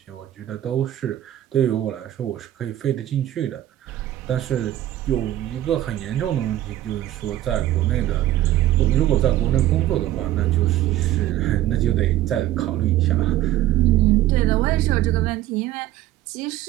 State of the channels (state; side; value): quieter; left; 13.9 dB